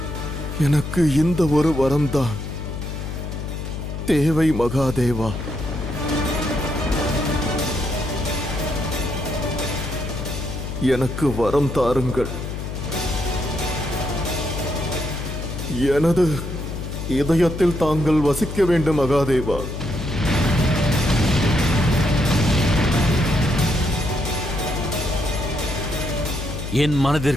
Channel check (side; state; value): left; noise; hum, 6 dB below the sound